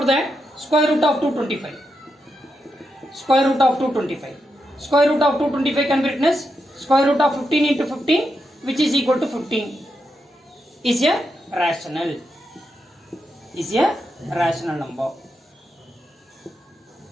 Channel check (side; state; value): both; normal; correlation 0.85